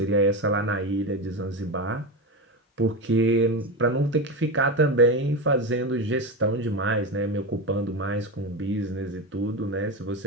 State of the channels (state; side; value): normal; both; correlation 0.18